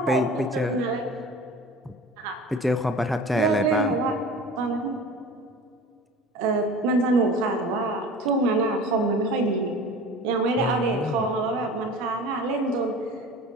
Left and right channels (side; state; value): both; normal; correlation 0.39